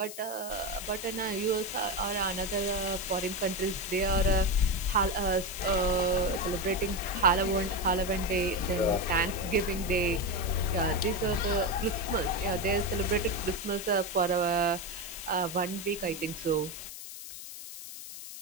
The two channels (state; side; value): noise; left; hiss, 11 dB below the sound